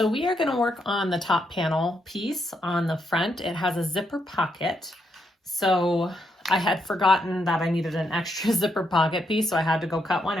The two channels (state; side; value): normal; both; correlation 0.79